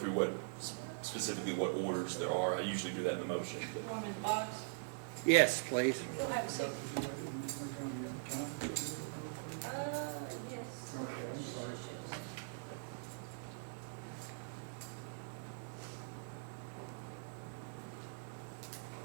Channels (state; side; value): silent; left; digital silence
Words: specifically what orders there are. I usually do that in the motion, but Want him in the box? Yes, please. You'll have a seat. Yes.